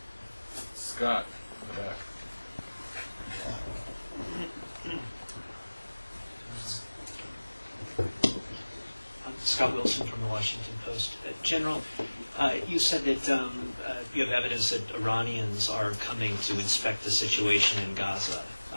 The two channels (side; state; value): both; inverted; correlation -1.00